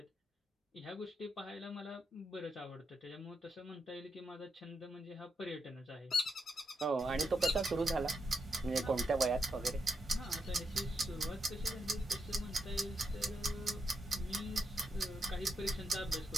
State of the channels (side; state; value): both; normal; correlation 0.82